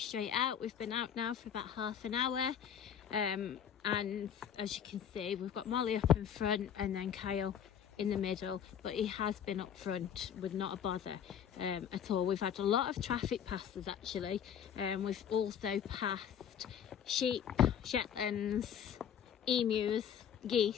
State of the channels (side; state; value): right; quieter; 8.7 dB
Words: out. We've been out now for about half an hour, and as you can see, we've got Molly up in front and then Kyle in the middle, but he has been up front with not a bother at all. We've had a lot of traffic passes actually. We've also passed sheep, Shetlands, emus,